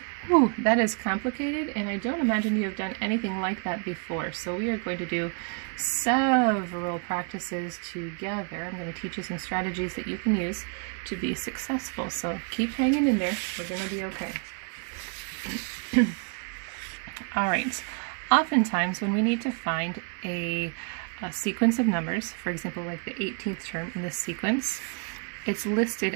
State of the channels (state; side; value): quieter; left; 39.0 dB